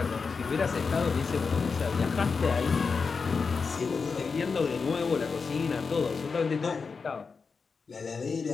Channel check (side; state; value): right; quieter; 5.0 dB